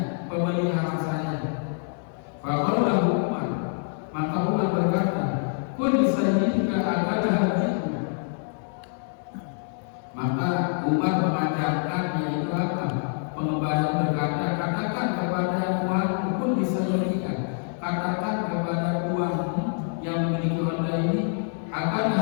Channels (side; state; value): right; silent; 59 dB below the other